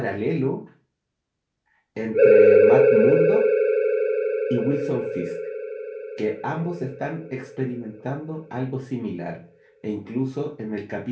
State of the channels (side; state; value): both; identical; correlation 1.00